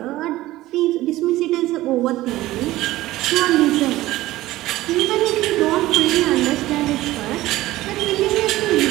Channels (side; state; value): left; quieter; 16.7 dB